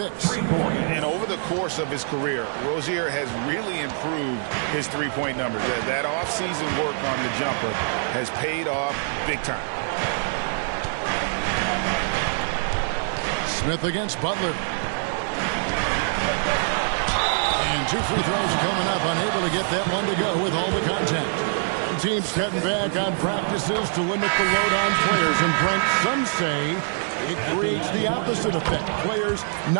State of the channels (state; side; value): silent; left; 62 dB below the other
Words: And over the course of his career, Rozier has really improved his three-point numbers. That off-season work on the jumper has paid off big time. Smith against Butler. And 2 free throws coming up, unable to get that one to go with all the contact. Teams cutting back on practices to limit the load on players. And Brent, some say it creates the opposite effect. Players